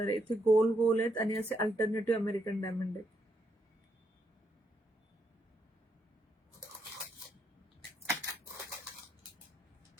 आहे. इथे गोल गोल आहेत आणि असे अल्टरनेटिव्ह अमेरिकन डायमंड आहेत.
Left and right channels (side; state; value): both; normal; correlation 0.77